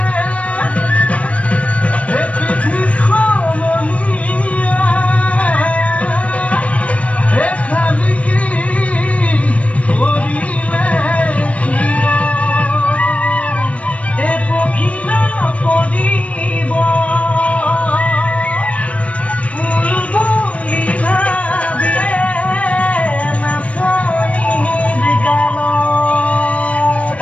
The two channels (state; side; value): late; right; 0.065 ms